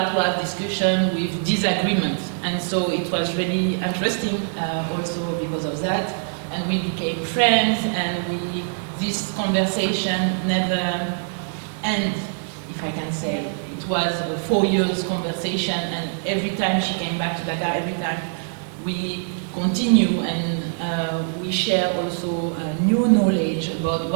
to have discussion with disagreement, and so it was really interesting also because of that, and we became friends, and this conversation never ended, if I can say. It was a 4 years conversation, and every time she came back to Dakar, every time we continue, and we share also new knowledge about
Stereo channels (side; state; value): left; silent; digital silence